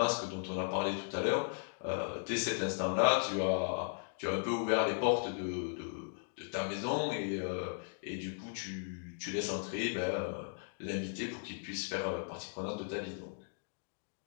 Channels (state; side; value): silent; right; digital silence